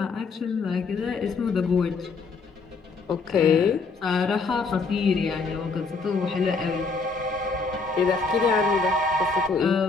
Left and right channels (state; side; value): quieter; right; 4.3 dB